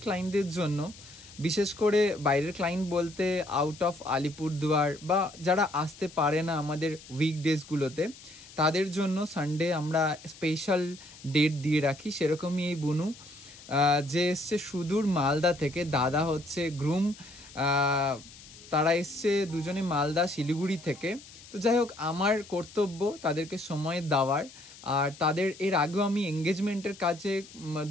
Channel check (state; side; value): noise; left; hiss, 19 dB below the sound